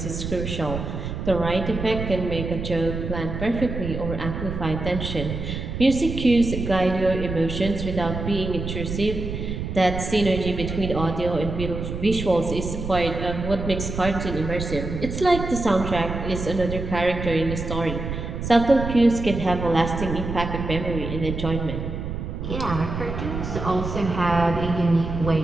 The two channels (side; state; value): right; noise; rumble, 5 dB below the sound